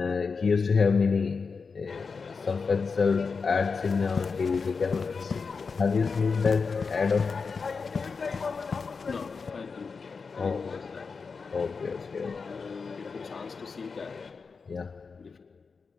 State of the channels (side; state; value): right; quieter; 5.0 dB